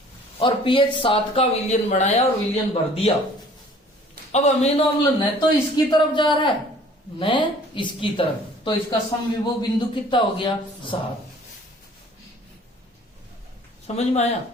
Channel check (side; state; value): both; normal; correlation 0.52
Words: और pH 7 का विलयन बनाया और विलयन भर दिया। अब अमीनो अम्ल न तो इसकी तरफ जा रहा है न इसकी तरफ, तो इसका समविभव बिंदु कितना हो गया? 7। समझ में आया?